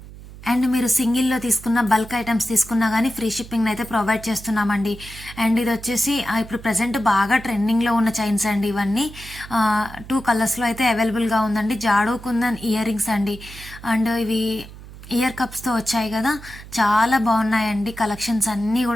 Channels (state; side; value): noise; right; hum, 16 dB below the sound